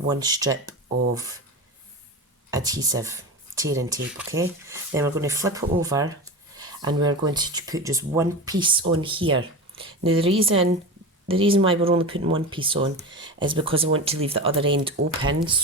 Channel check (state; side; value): normal; both; correlation 0.26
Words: strip of adhesive tearing tape, okay? Then we're going to flip it over and we're going to put just one piece on here. Now the reason why we're only putting one piece on is because I want to leave the other end open